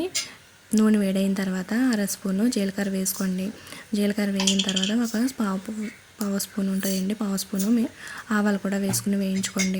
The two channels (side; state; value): both; identical; correlation 1.00